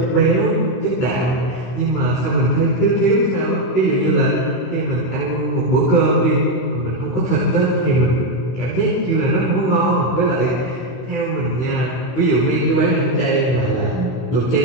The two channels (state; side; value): late; right; 16 ms